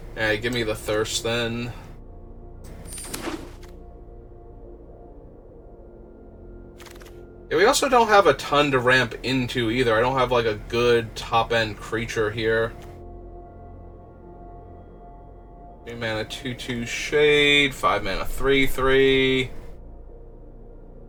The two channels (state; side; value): identical; both; correlation 1.00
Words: Alright, give me the Thirst then. Yeah, we also don't have a ton to ramp into either. I don't have like a good top-end creature here. 3 mana 2/2 Shade, 5 mana 3/3.